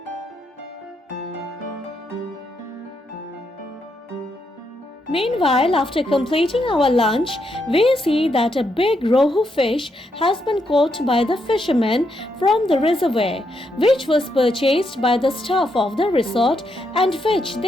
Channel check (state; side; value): normal; both; correlation 0.79